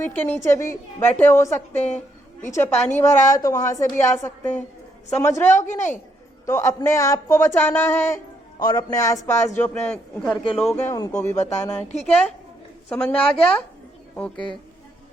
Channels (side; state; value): both; normal; correlation 0.74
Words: के नीचे भी बैठे हो सकते हैं, पीछे पानी भरा है तो वहां से भी आ सकते हैं। समझ रहे हो कि नहीं? तो अपने आप को बचाना है और अपने आसपास जो अपने घर के लोग हैं उनको भी बताना है। ठीक है, समझ में आ गया? ओके,